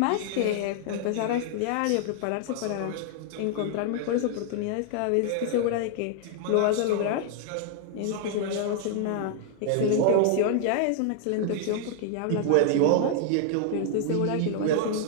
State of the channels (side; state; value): both; different; correlation -0.01